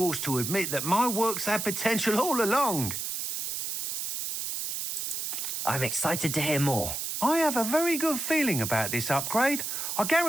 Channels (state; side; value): noise; right; hiss, 3 dB below the sound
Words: to admit that my work's had potential all along. I'm excited to hear more. I have a very good feeling about this upgrade. I